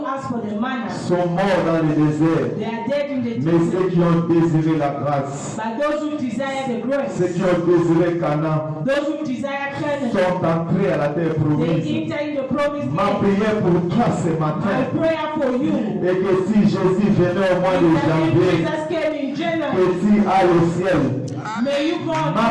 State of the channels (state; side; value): identical; both; correlation 1.00